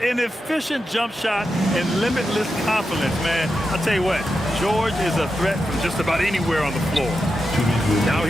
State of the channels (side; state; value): both; normal; correlation 0.88